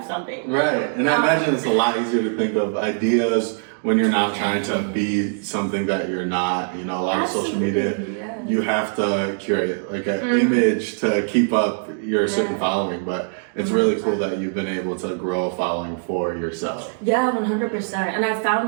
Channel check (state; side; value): silent; left; digital silence